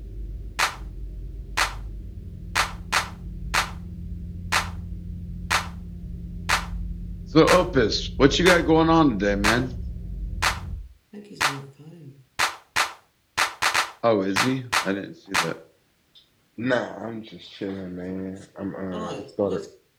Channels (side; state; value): both; identical; correlation 1.00